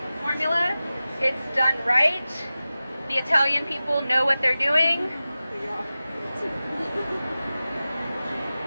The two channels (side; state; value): both; inverted; correlation -0.95